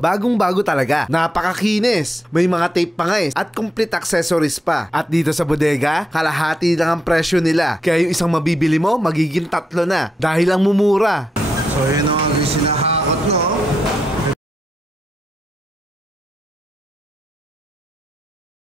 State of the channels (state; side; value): normal; both; correlation 0.82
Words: talaga. Napakakinis. May mga tape pa nga at complete accessories pa. At dito sa bodega, kalahati lang ang presyo nila. Kaya yung isang mabibili mo, magiging 3 na. Dahil lang mumura. So yun ang sinahakot, no?